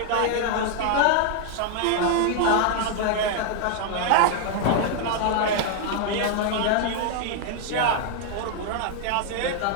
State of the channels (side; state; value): both; different; correlation 0.00